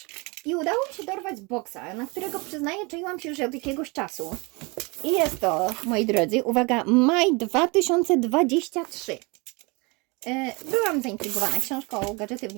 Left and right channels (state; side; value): quieter; left; 28.0 dB